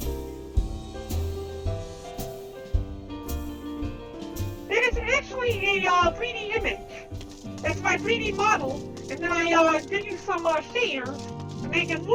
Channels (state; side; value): identical; both; correlation 1.00